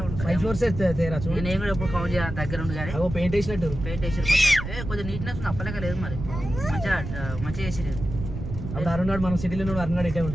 5 ఫ్లోర్స్ తేరా చూడు. నేను కూడా ఎప్పుడు కౌంట్ చేయాలి దగ్గర ఉంది కానీ పెయింట్ వేసినట్టు పెయింట్ వేసి కొంచెం నీట్నెస్ అప్పలేక లేదు. మరి మంచిగా వేసి లేదు. అప్పుడు అరుణాడు మనం సిటీలో ఉన్నాడు. అరుణాడు ఇటే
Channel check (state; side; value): noise; right; rumble, 7 dB below the sound